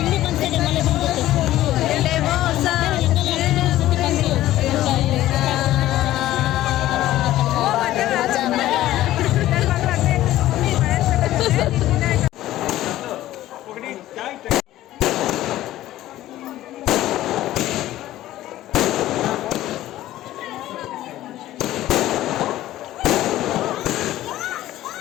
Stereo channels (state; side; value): quieter; right; 14.6 dB